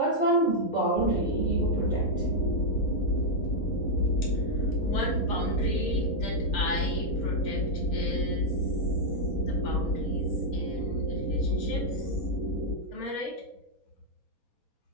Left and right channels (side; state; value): right; late; 4.2 ms